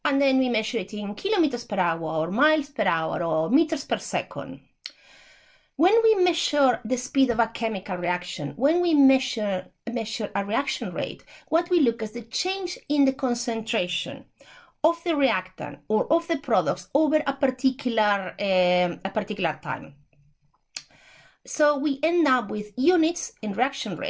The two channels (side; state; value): both; identical; correlation 1.00